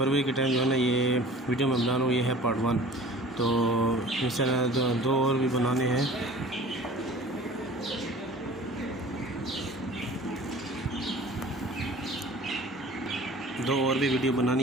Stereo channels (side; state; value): both; normal; correlation 0.44